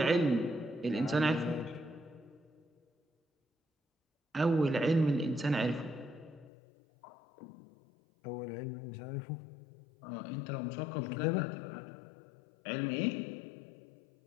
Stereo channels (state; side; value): drops out; right; at 6.5 s